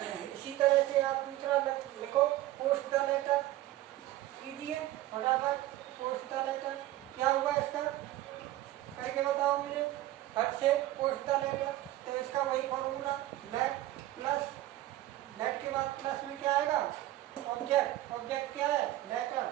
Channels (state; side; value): quieter; left; 15.6 dB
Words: इसी तरह से आप दूसरा लिखो, पोस्ट द लेटर कीजिए फटाफट। पोस्ट द लेटर क्या हुआ इसका? करके बताओ मुझे फट से। पोस्ट द लेटर, तो इसका वही फॉर्मूला लेट प्लस, लेट के बाद प्लस में क्या आएगा? ऑब्जेक्ट। ऑब्जेक्ट क्या है? Letter,